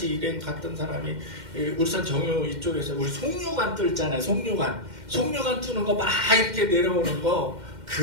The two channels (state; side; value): late; left; 2.1 ms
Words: 일행 갔던 사람이 울산 정유 이쪽에서 우리 송유관 뚫잖아요. 송유관 뚫는 거 막 이렇게 내려오는 거